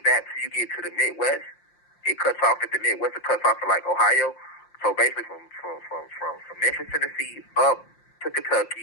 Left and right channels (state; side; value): late; right; 5.7 ms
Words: back till you get to the Midwest. It cuts off at the Midwest. It cuts off at like Ohio. So basically from Memphis, Tennessee, up to